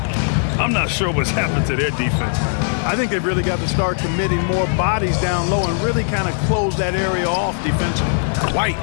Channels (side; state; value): right; silent; digital silence